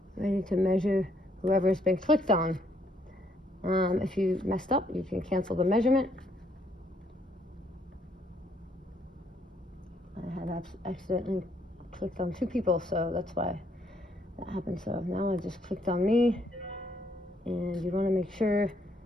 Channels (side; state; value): both; normal; correlation 0.70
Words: to measure whoever's been clicked on. If you messed up, you can cancel the measurement. I had accidentally clicked on 2 people, so that's why that happened. So now I just clicked on me, and you want to make sure